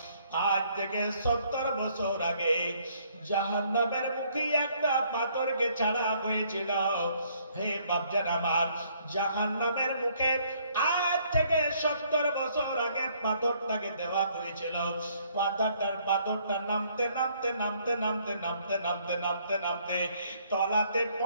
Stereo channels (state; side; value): inverted; both; correlation -0.65